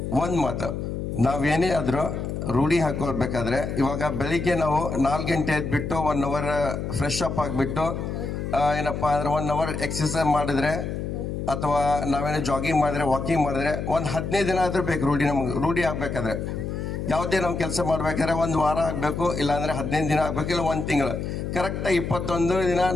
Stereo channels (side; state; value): left; noise; hum, 4 dB below the sound